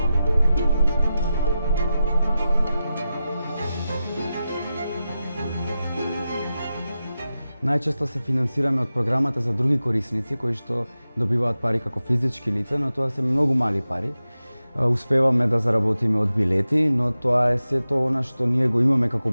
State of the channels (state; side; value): inverted; both; correlation -0.92